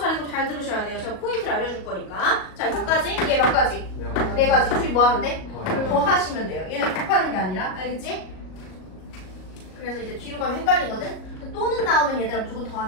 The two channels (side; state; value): right; late; 38 ms